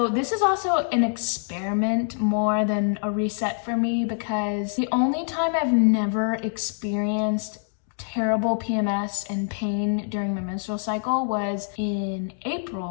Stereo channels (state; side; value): silent; right; digital silence